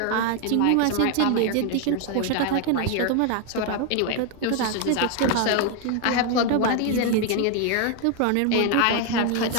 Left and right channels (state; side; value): different; both; correlation 0.01